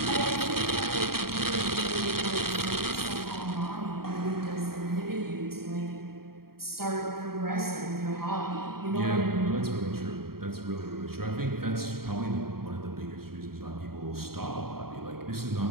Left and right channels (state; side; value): late; left; 0.94 ms